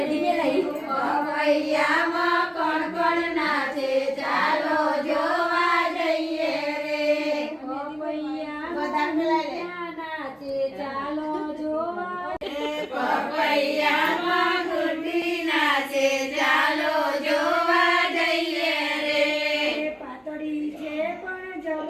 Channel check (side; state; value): both; identical; correlation 1.00